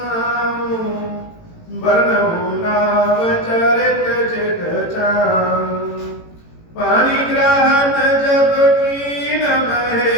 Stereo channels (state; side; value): late; right; 18 ms